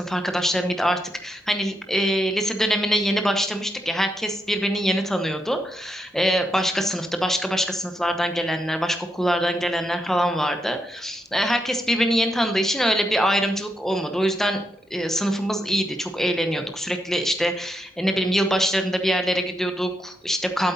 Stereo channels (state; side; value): normal; both; correlation 0.82